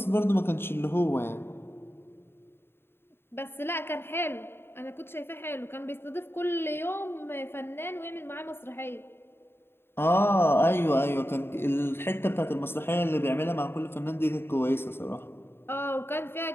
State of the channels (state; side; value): late; right; 0.11 ms